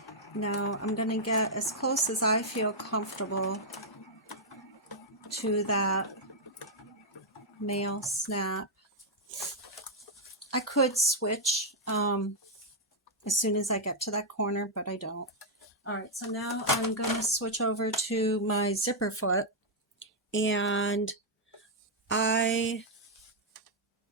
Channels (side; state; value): both; normal; correlation -0.04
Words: Now I'm going to get as close as I feel comfortable to that male snap. I could switch as soon as I get to that corner, but I don't. Alright, so now I'm going to switch over to my zipper foot, and I